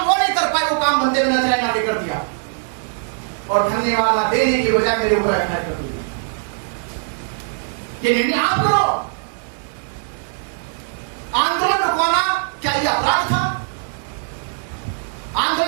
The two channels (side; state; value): left; silent; 64 dB below the other